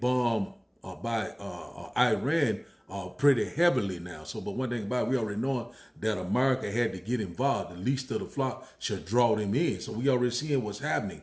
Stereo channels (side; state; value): both; identical; correlation 1.00